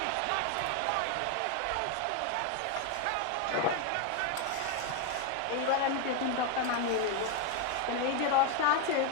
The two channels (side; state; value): both; different; correlation 0.01